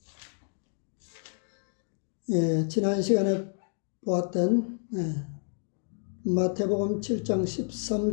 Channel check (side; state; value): right; silent; 58 dB below the other